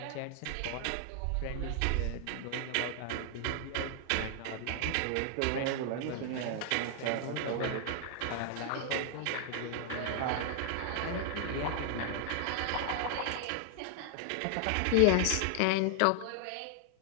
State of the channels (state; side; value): different; both; correlation 0.00